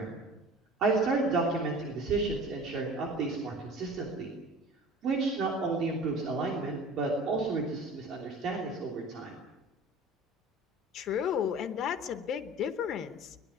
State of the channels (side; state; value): both; normal; correlation 0.41